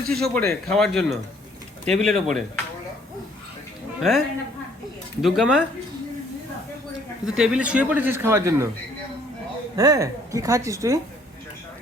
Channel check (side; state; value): both; normal; correlation 0.61